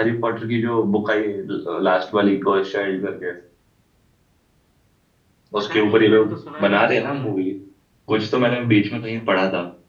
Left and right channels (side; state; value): both; identical; correlation 1.00